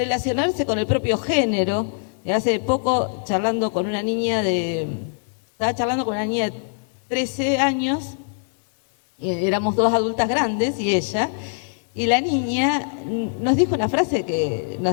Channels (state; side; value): silent; right; 64 dB below the other